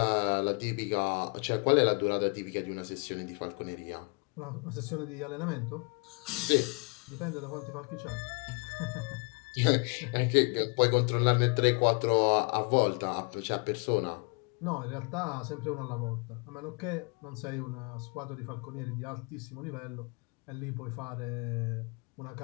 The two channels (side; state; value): right; quieter; 32.8 dB